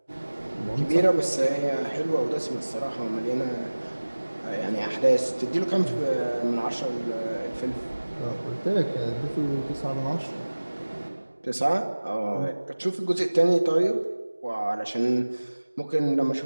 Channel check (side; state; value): both; inverted; correlation -1.00